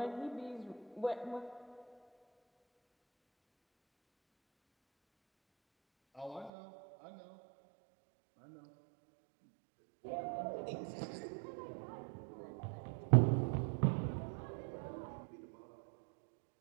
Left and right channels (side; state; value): left; drops out; at 6.5 s